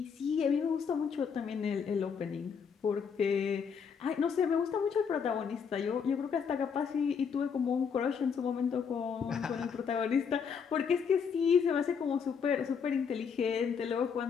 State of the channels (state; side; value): quieter; right; 6.5 dB